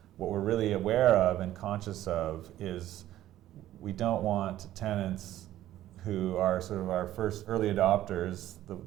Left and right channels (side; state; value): left; quieter; 13.6 dB